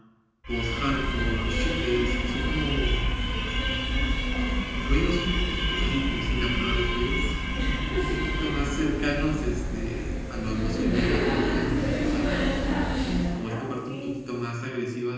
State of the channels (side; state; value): both; identical; correlation 1.00